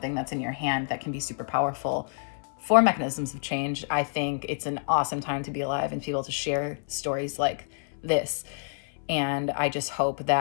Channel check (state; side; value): silent; right; 59 dB below the other